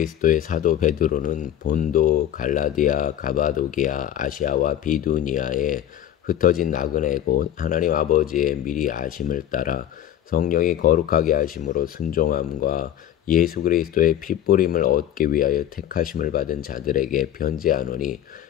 사도 베드로는 본도, 갈라디아, 가바도기아, 아시아와 비두니아에 흩어진 나그네 곧 하나님 아버지의 미리 아심을 따라 성령이 거룩하게 하심으로 순종함과 예수 그리스도의 핏부림을 얻기 위하여 택하심을 받은 자들에게 편지하노니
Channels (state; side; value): quieter; right; 11.2 dB